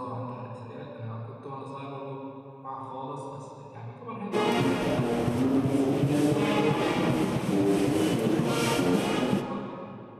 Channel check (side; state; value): both; identical; correlation 1.00